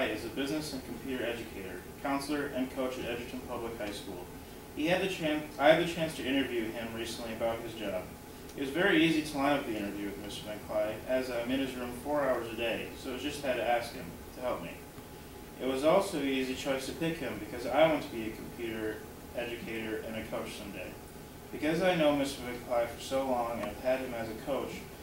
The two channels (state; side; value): identical; both; correlation 1.00